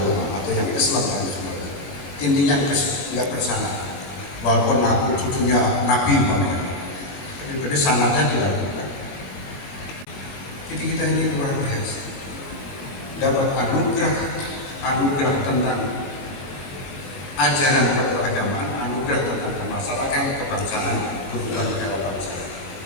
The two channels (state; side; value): late; right; 22 ms